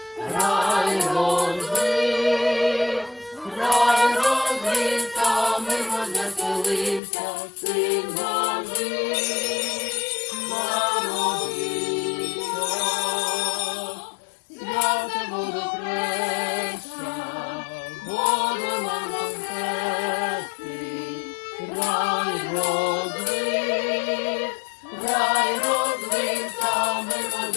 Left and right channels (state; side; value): drops out; right; at 7.0 s